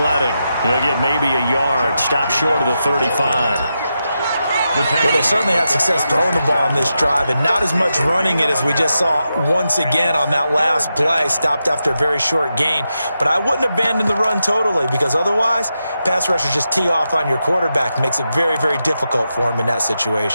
He'll get maybe a yard. Stop short of the 35. Well, they certainly had success throwing the ball on this drive, and not as much running it as we just saw once again on that last play. Stopped after a very short gain. But I wouldn't abandon the run totally, because otherwise, pass rushers just tee off on your quarterback. Makes it very, very difficult for him in that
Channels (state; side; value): inverted; both; correlation -0.87